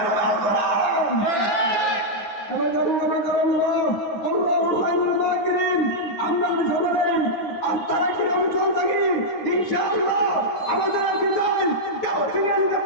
হবে আল কোরআন। আমরা সবাই আস্থা রাখি, অঞ্চল থাকি, ইনশাআল্লাহ আমাদের বিজয় কেউ ছিনিয়ে নিতে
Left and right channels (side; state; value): right; late; 9.3 ms